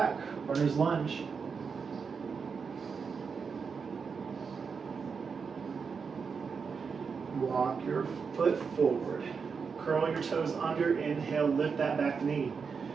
Runner's lunge. Walk your foot forward. Curl your toes under. Inhale, lift that back knee.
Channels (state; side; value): quieter; left; 5.6 dB